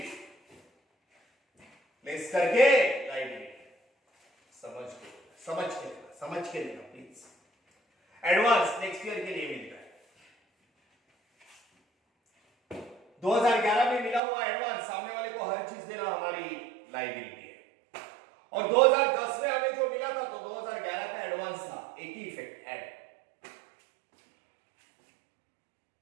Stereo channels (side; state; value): left; drops out; at 14.2 s